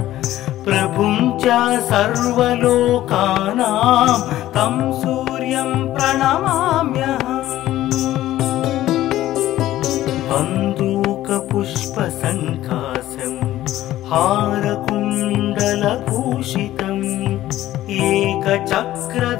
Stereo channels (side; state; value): right; quieter; 14.3 dB